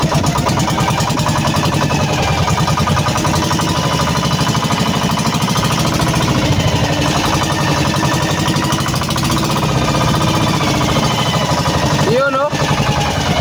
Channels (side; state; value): both; identical; correlation 1.00